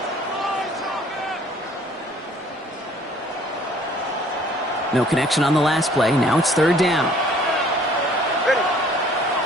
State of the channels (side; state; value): both; normal; correlation 0.56